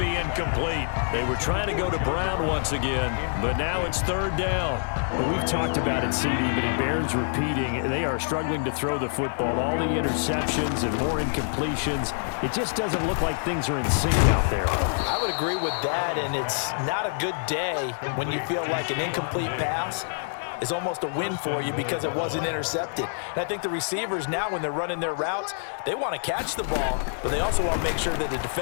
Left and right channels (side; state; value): right; silent; 61 dB below the other